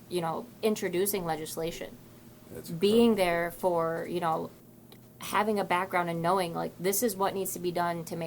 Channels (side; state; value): both; identical; correlation 1.00